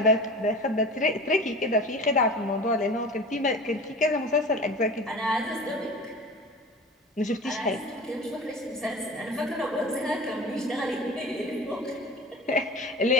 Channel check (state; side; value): normal; both; correlation 0.36